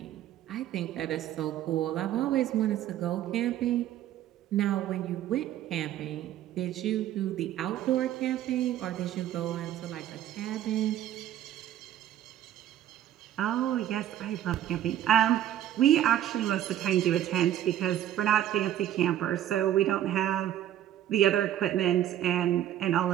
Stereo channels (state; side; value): quieter; left; 11.9 dB